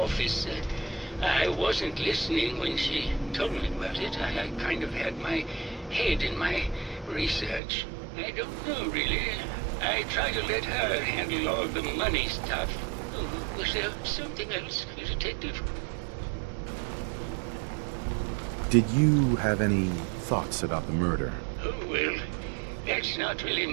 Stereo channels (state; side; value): drops out; left; at 7.6 s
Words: I wasn't listening when she told me about it. I kind of had my head in my research. I don't know, really. I try to let her handle all the money stuff. Oh, was there something else, Detective? Did you have any thoughts about the murder? Oh, well, that's not really